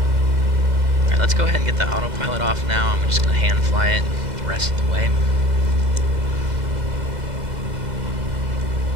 Alright, let's go ahead and get the autopilot off now. I'm just going to hand fly it the rest of the way.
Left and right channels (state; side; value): late; left; 2.0 ms